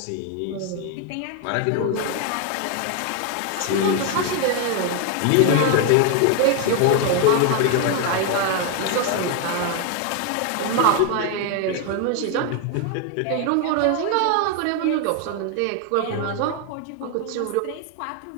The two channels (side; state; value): both; different; correlation 0.01